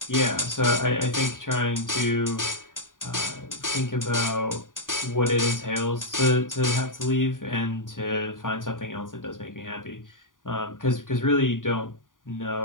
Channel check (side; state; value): right; late; 0.89 ms